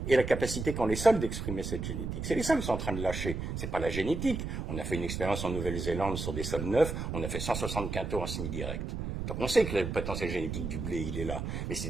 et la capacité qu'ont les sols d'exprimer cette génétique. C'est les sols qui sont en train de lâcher, c'est pas la génétique. On a fait une expérience en Nouvelle-Zélande sur des sols neufs, on a fait 160 quintaux en semi-direct. Donc on sait que le potentiel génétique du blé, il est là. Mais c'est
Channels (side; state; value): right; noise; rumble, 4 dB below the sound